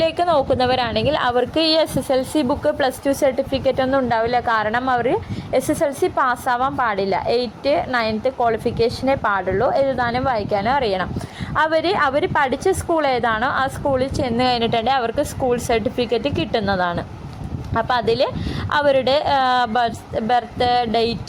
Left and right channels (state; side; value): identical; both; correlation 1.00